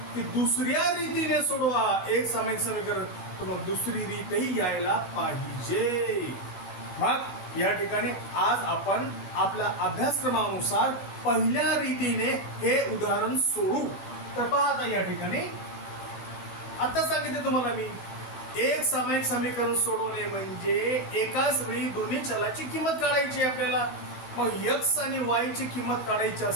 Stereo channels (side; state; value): right; late; 16 ms